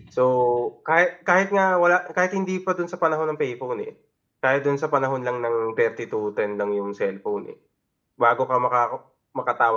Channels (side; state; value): both; identical; correlation 1.00